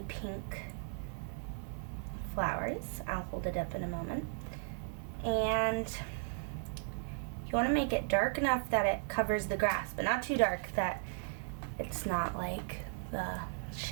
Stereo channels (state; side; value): silent; left; digital silence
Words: pink flowers. I'll hold it up in a moment. And you want to make it dark enough that it covers the grass, but not too dark that it's not like the